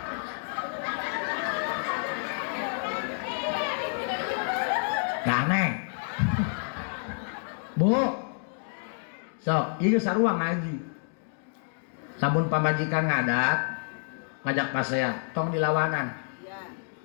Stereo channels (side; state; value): right; silent; 59 dB below the other